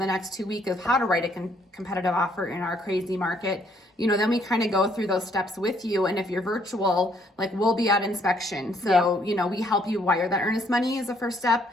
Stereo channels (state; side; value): normal; both; correlation 0.67